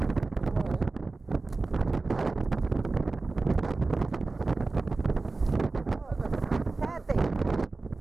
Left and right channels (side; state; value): left; quieter; 3.6 dB